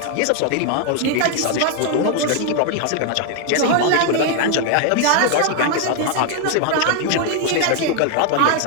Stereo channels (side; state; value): both; different; correlation 0.01